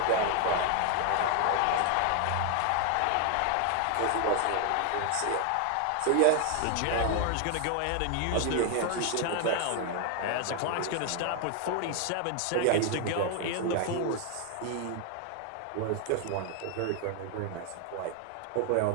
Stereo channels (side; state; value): both; different; correlation 0.00